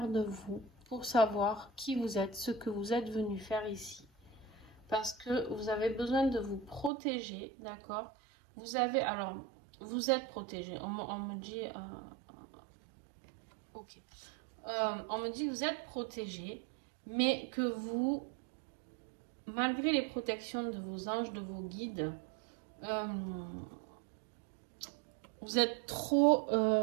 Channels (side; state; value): left; drops out; at 6.9 s